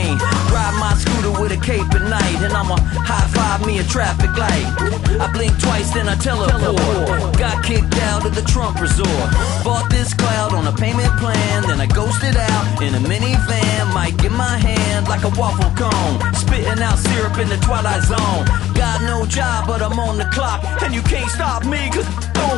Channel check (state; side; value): quieter; right; 13.6 dB